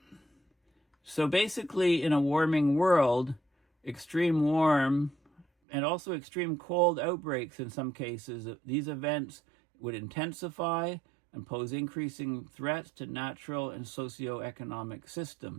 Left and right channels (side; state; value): left; drops out; at 5.5 s